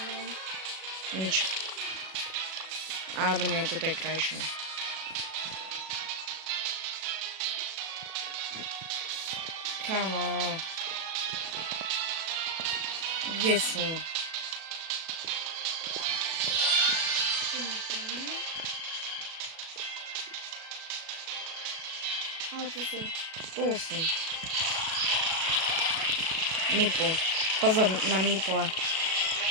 Nič. Alebo nie, toto je krajšie. Kamo. Kde sú? Tu nemáme. A tu sú. Tu sú. Mipl. Pozor na Mipla.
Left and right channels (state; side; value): late; left; 37 ms